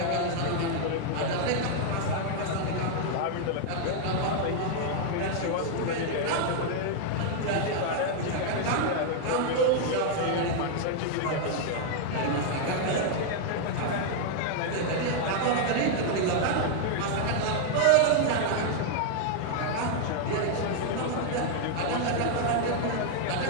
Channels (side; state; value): both; different; correlation 0.00